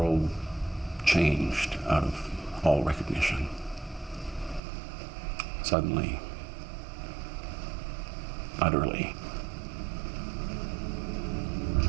changed out of all recognition. Suddenly, utterly,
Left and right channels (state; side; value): drops out; left; at 4.6 s